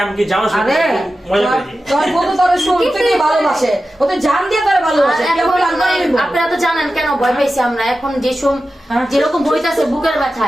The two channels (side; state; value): both; normal; correlation 0.93